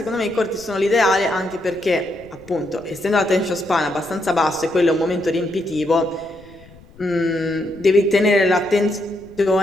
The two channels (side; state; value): left; noise; rumble, 24 dB below the sound